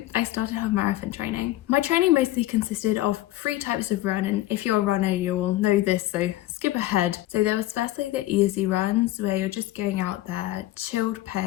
I started half marathon training. My training mostly consisted of 3 types of run, and if you're a runner, you'll know this, so skip ahead. So there was firstly the easy runs, where you're just going out there, chilled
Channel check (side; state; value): right; quieter; 16.1 dB